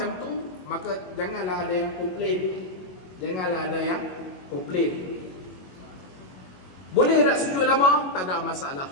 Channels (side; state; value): right; late; 22 ms